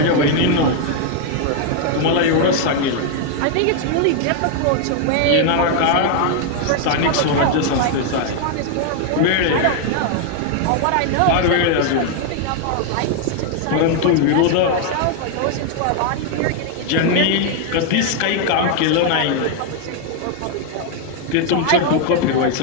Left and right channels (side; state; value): both; different; correlation 0.00